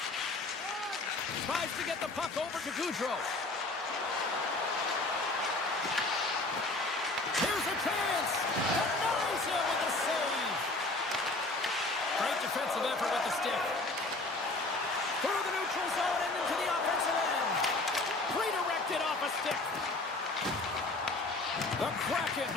Tries to get the puck over to Gaudreau. Here's a chance. Denies him with the save. Great defensive effort with the stick. Through the neutral zone and into the offensive end. Redirected off a stick. The Kraken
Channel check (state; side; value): quieter; right; 3.0 dB